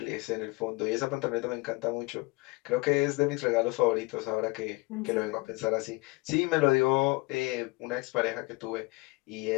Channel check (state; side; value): quieter; right; 25.3 dB